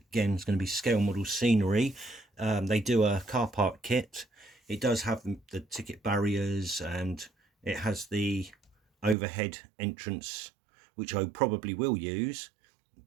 going to be scale model scenery. They do a car park kit. It does have the ticket barriers, and it has the overhead entrance, which I probably will use.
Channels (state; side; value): drops out; left; at 9.2 s